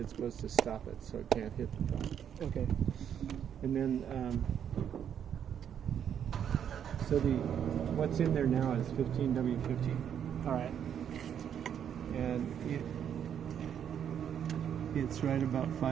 supposed to stop it, so it can't hit the front. Okay. And then, so what's in there now is 15W50, All right. and it's right about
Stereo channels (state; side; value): quieter; left; 8.8 dB